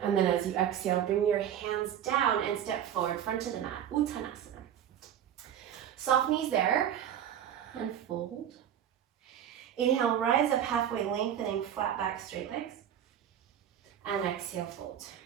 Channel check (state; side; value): quieter; left; 10.0 dB